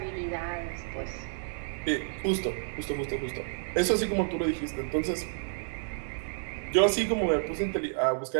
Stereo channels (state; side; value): silent; left; 58 dB below the other